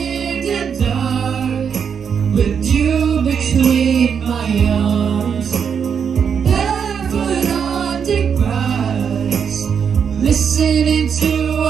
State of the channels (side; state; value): left; quieter; 7.1 dB